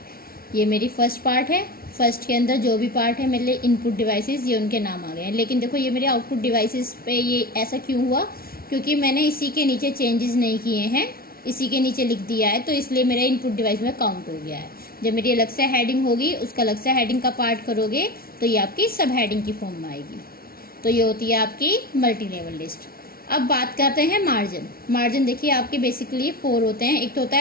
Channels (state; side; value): late; right; 0.43 ms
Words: ये मेरी फर्स्ट पार्ट है। फर्स्ट के अंदर जो भी पार्ट है मेरे लिए इनपुट डिवाइसेस, ये उनके नाम आ गए हैं। लेकिन देखो ये मेरे आउटपुट डिवाइसेस पे ये ऐसा क्यों हुआ, क्योंकि मैंने इसी के नीचे चेंजेस नहीं किए हैं, इसी के नीचे लिख दिया है, तो इसलिए मेरा इनपुट डिवाइस में काउंट हो गया है। जब मेरी अलग से हेडिंग होगी, उसका अलग से हेडिंग का पार्ट करोगे तो ये आपकी सब हेडिंग की फॉर्म में आएगी। तो ये होती है आपकी मल्टी लेवल लिस्ट। अब बात करते हैं मार्जिन। मार्जिन देखिए आपके बेसिकली 4 होते हैं। एक तो होता